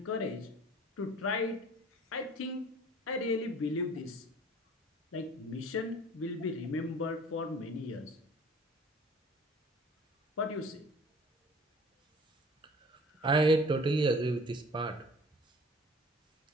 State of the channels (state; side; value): normal; both; correlation 0.48